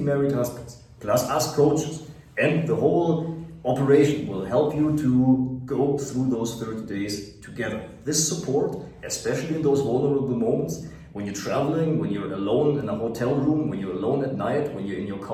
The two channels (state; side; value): identical; both; correlation 1.00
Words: married husbands, plus us coaches, and the whole operation will help you to go through those 30 days together. This support, especially in those vulnerable moments, when you're traveling, when you're alone in a hotel room, when you're alone at night, when you're in your